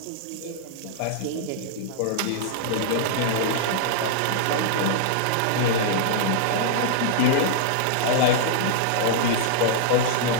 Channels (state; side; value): different; both; correlation -0.01